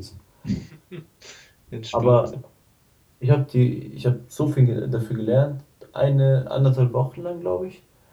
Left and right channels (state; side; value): identical; both; correlation 1.00